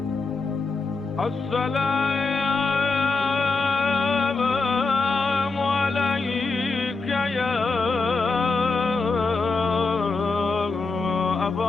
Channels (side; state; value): right; quieter; 3.9 dB